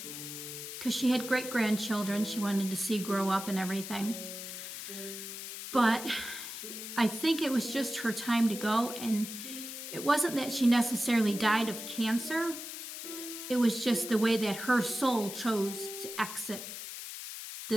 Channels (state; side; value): noise; left; hiss, 9 dB below the sound